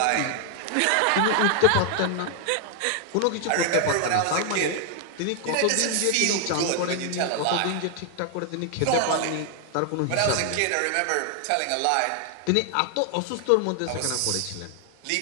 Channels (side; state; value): both; different; correlation 0.00